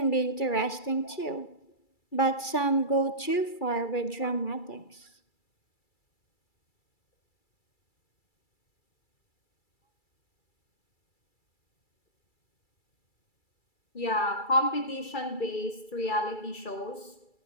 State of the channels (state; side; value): late; right; 2.3 ms